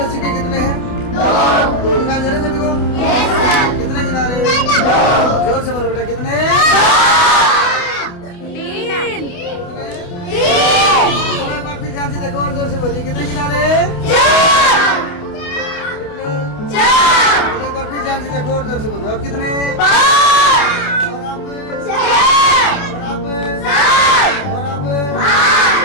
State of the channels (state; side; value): late; right; 28 ms